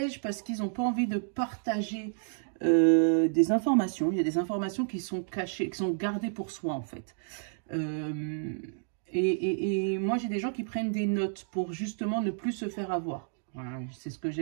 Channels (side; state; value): left; silent; digital silence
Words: parce qu'ils n'ont pas envie de partager des informations. Il y a des informations qui sont cachées, qui sont gardées pour soi en fait. Et moi j'ai des gens qui prennent des notes pour justement ne plus se faire avoir. Voilà, c'est ce que